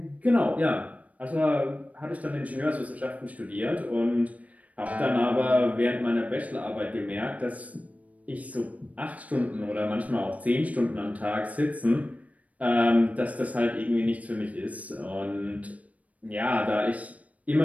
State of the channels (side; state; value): left; late; 0.069 ms